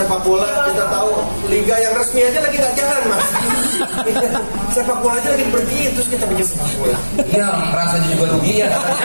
bola? Kita tahu liga yang resmi aja lagi nggak jalan, Mas. Sepak bola aja lagi pergi, terus kita bikin sepak bola. Iya, merasa juga rugi ya.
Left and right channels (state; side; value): inverted; both; correlation -1.00